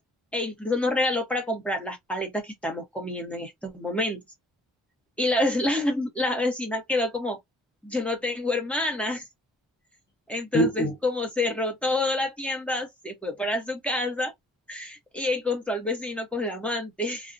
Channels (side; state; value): both; normal; correlation 0.58